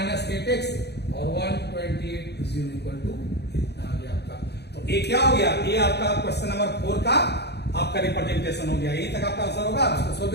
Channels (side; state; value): right; late; 0.48 ms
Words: 8x और 128 इक्वल टू आ गया आपका। तो ये क्या हो गया, ये आपका क्वेश्चन नंबर 4 का आपका रिप्रेजेंटेशन हो गया। यही तक आपका आंसर होगा, आप इसको सोल्व